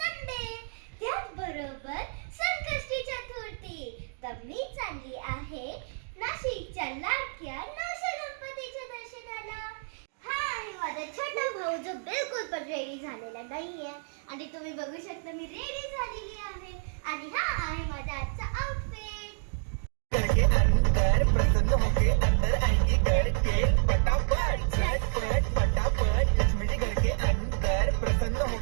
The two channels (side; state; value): left; silent; 57 dB below the other